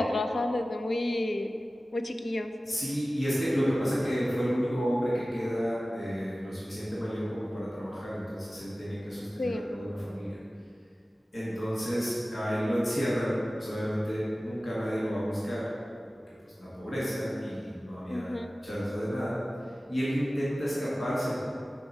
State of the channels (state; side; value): normal; both; correlation 0.97